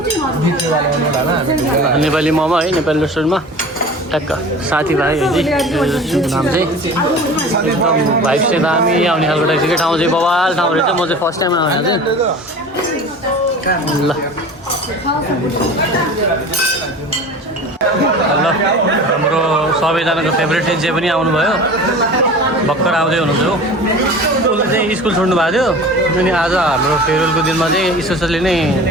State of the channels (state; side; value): normal; both; correlation 0.38